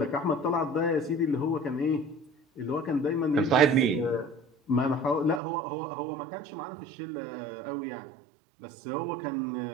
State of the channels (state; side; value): drops out; left; at 5.4 s